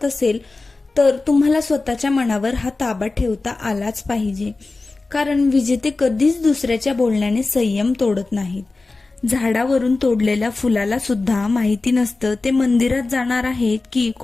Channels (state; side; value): quieter; right; 3.5 dB